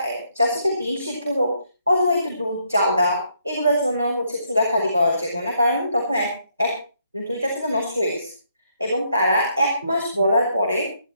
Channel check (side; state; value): both; inverted; correlation -0.73